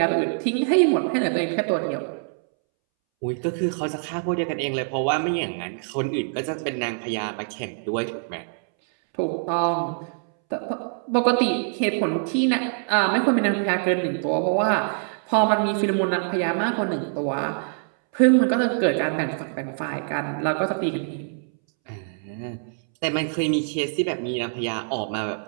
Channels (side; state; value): left; silent; 62 dB below the other